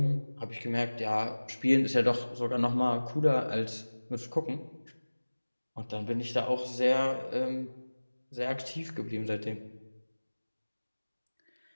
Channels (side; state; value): both; inverted; correlation -1.00